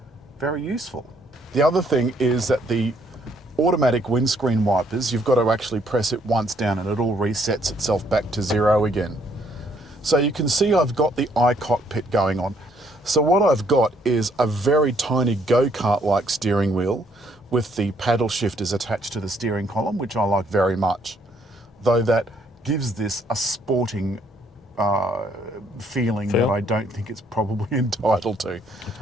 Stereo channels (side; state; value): both; normal; correlation 0.68